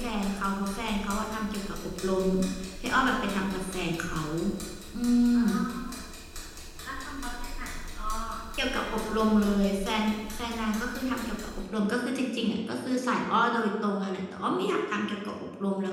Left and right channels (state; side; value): identical; both; correlation 1.00